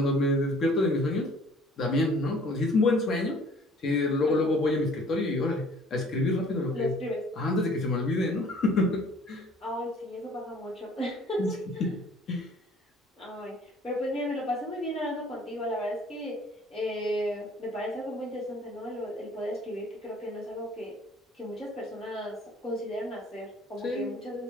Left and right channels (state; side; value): normal; both; correlation 0.54